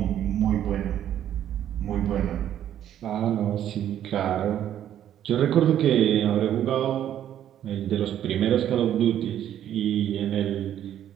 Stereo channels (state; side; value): quieter; left; 10.8 dB